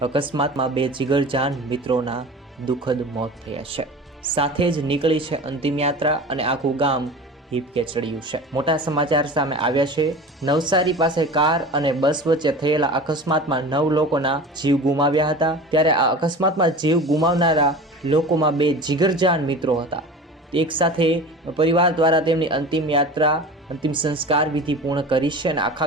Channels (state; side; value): normal; both; correlation 0.36